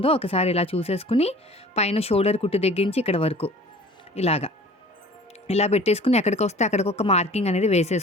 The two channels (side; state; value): both; normal; correlation 0.46